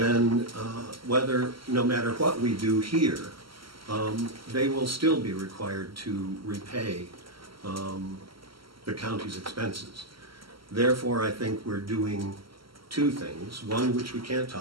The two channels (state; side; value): late; left; 0.74 ms